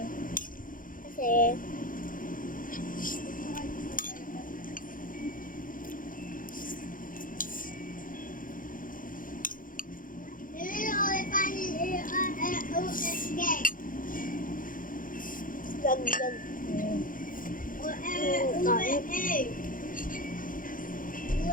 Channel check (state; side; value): late; right; 0.40 ms